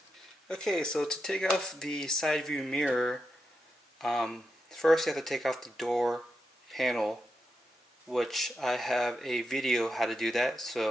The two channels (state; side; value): normal; both; correlation 0.86